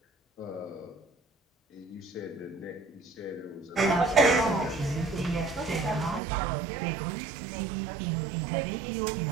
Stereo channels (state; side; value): drops out; left; at 6.2 s